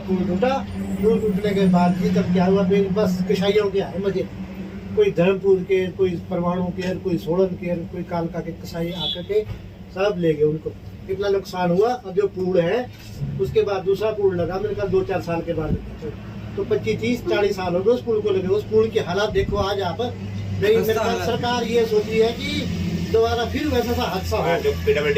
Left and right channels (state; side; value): identical; both; correlation 1.00